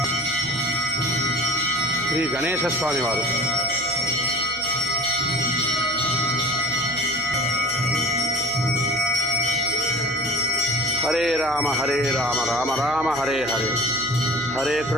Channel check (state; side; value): noise; right; hum, 19 dB below the sound